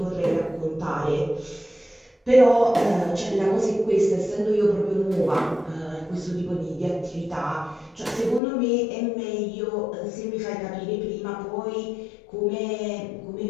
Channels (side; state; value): right; drops out; at 8.4 s